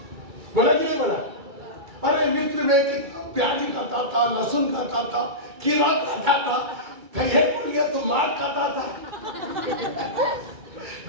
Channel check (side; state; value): left; late; 2.3 ms